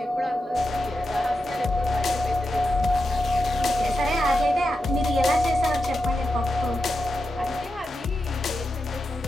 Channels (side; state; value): both; normal; correlation 0.89